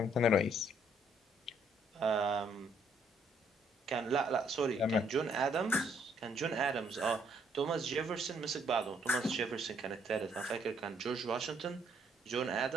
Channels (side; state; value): both; normal; correlation 0.68